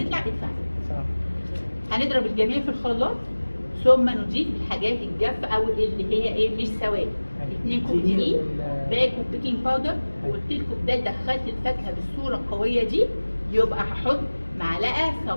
ادفع. صح. هنضرب الجميع في الخلاط ثم نضيف الحاجات الجافه او اللي هي ايه مش سوائل. 2 كوب دقيق، باكو بيكنج باودر، وقلت لكم ده دخلت الفاكهه بالصوره القويه دي، يبقى هحط معلقه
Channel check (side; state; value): both; inverted; correlation -1.00